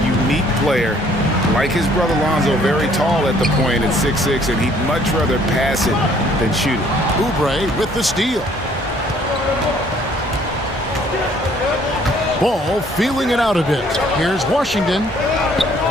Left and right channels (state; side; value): normal; both; correlation 0.61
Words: unique player. Like his brother Lonzo, very tall at the point at 6'6", and he'd much rather pass it than shoot it. Oubre with the steal. Ball feeling it out a bit. Here's Washington.